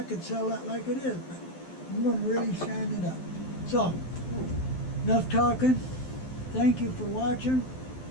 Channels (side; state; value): right; late; 12 ms